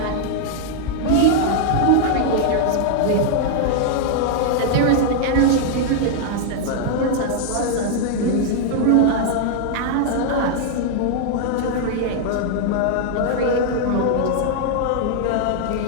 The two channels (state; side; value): different; both; correlation 0.00